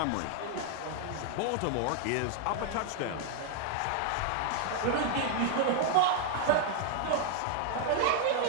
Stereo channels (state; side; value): different; both; correlation 0.00